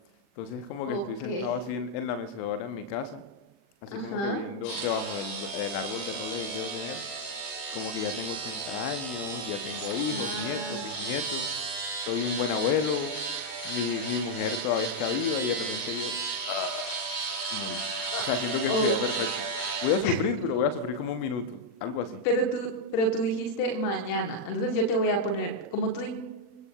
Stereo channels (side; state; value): right; late; 40 ms